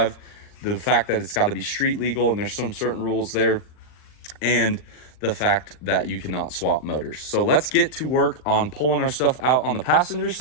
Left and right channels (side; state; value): right; late; 39 ms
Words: the fact that it's got to be street legal and there's some certain rules there, and the fact that you cannot swap motors. So let's get to work on pulling our stuff out on the passenger